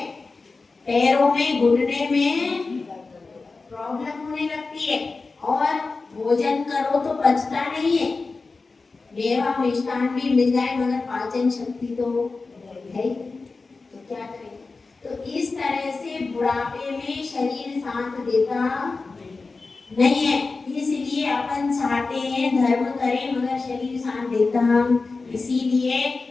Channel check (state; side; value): quieter; right; 4.0 dB